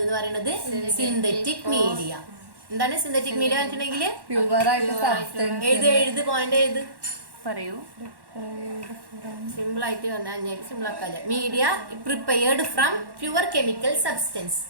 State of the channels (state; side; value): late; left; 1.1 ms